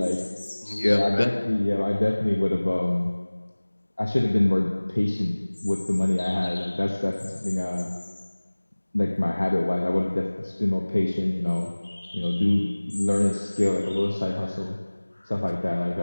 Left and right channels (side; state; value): both; inverted; correlation -1.00